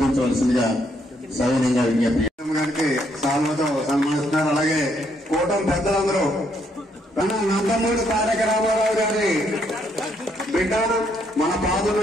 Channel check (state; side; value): normal; both; correlation 0.72